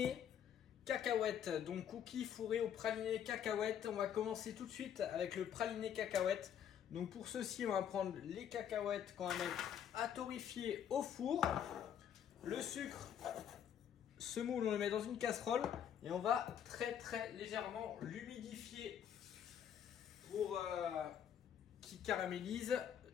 cacahuètes. Donc cookies fourrés au praliné cacahuètes. On va commencer tout de suite avec le praliné cacahuètes. Donc pour ceci on va prendre les cacahuètes qu'on va mettre à torréfier au four. Le sucre, ce moule on le met dans une casserole et on va très légèrement l'humidifier pour qu'il caramélise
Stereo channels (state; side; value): quieter; right; 9.2 dB